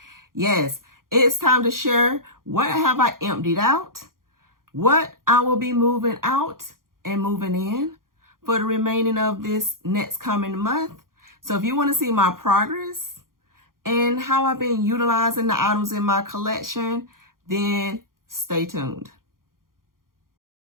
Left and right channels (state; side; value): late; left; 0.91 ms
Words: Yes, it's time to share what have I emptied out, what I will be moving out and moving in for the remaining of this next coming month. So if you want to see my progress and how I've been utilizing the items in my collection, then stay tuned.